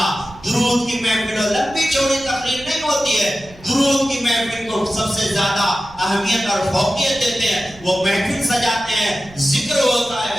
درود کی محفل، لمبی چوڑی تقریر نہیں ہوتی ہے، درود کی محفل کو سب سے زیادہ اہمیت اور فوقیت دیتے ہیں۔ وہ محفل سجاتے ہیں، ذکر ہوتا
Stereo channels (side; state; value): right; noise; rumble, 22 dB below the sound